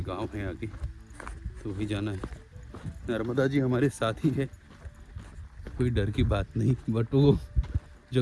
गांव है आगे, तो वही जाना है। नर्मदा जी हमारे साथ ही है, कोई डर की बात नहीं। बट वो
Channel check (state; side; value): identical; both; correlation 1.00